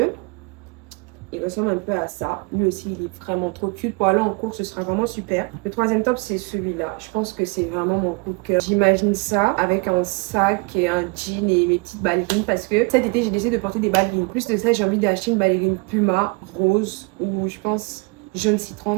Il ressemble un peu à ça. Lui aussi, il est vraiment trop cute. Pour aller en cours, ce sera vraiment super. Le troisième top, c'est celui-là. Je pense que c'est vraiment mon coup de cœur. J'imagine ça avec un sac et un jean et mes petites ballerines parce que cet été, j'ai décidé de porter des ballerines. Plus de ça, j'ai envie d'acheter une ballerine Puma rose ou je pense jaune citron,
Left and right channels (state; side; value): quieter; left; 29.5 dB